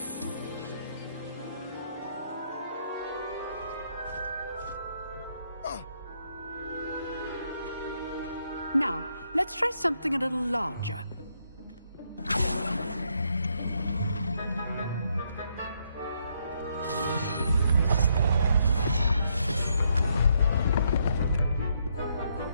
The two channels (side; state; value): both; inverted; correlation -0.75